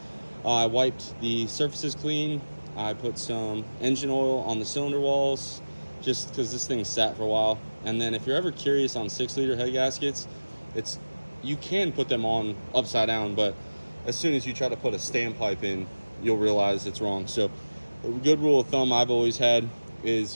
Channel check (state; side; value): inverted; both; correlation -1.00